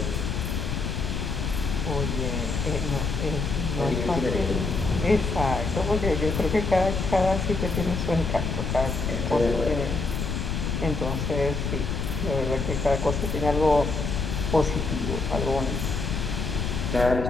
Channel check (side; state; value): left; noise; rumble, 2 dB below the sound